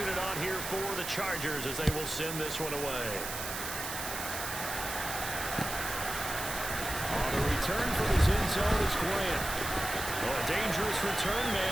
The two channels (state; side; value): noise; right; hiss, 6 dB below the sound